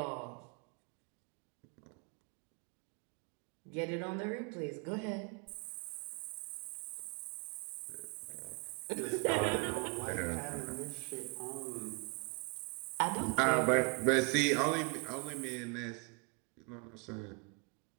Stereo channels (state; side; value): quieter; left; 32.6 dB